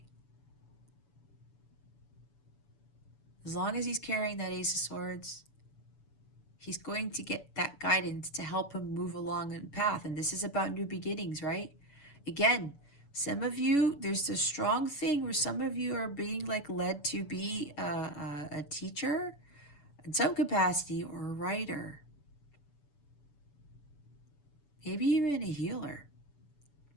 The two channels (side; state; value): right; late; 7.0 ms